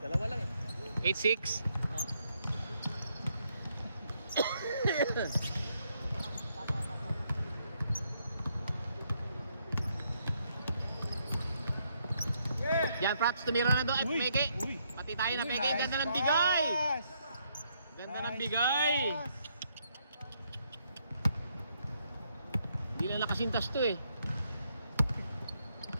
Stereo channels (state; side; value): inverted; both; correlation -0.74